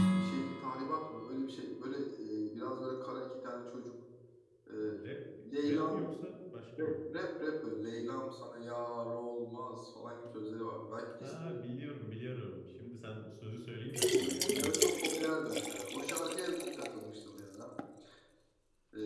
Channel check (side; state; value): both; identical; correlation 1.00